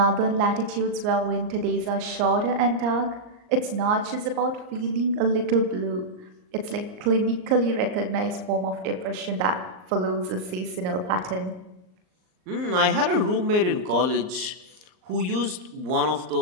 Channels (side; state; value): left; late; 38 ms